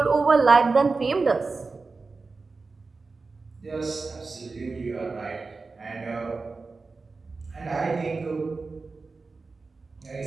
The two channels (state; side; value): quieter; left; 4.0 dB